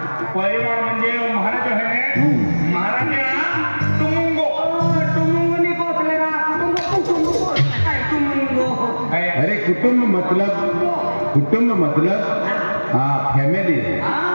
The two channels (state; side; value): inverted; both; correlation -1.00